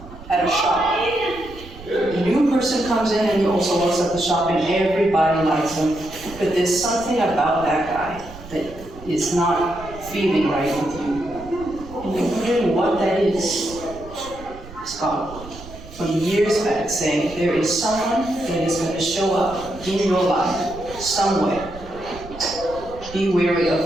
at a shop. A new person comes in and he also works at the shop, and everybody likes him. But there's something about that guy that is not feeling right with you. And you're wondering what that is. It's gone. From years back, saying there is someone that is going to show up in your life somewhere. Be wary of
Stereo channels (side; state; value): right; noise; rumble, 16 dB below the sound